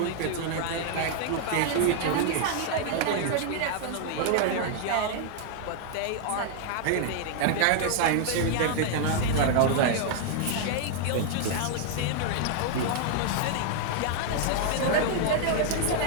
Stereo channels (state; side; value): different; both; correlation -0.01